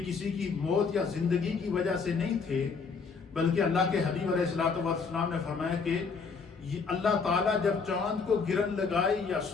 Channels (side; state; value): right; quieter; 5.1 dB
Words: کسی کی موت یا زندگی کی وجہ سے نہیں تھے، بلکہ اللہ کے حبیب علیہ السلام نے فرمایا کہ اللہ تعالیٰ جب چاند کو گرن لگائے یا